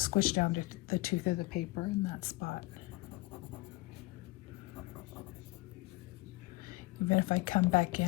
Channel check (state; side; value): quieter; right; 20.7 dB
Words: down to the tooth of the paper in that spot. Even if I come back